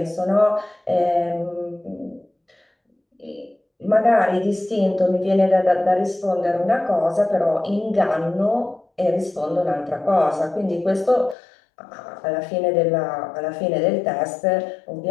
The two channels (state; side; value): drops out; right; at 11.4 s